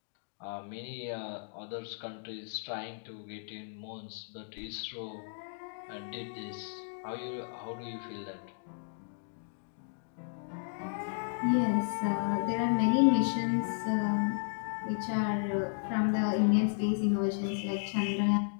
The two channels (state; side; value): silent; right; digital silence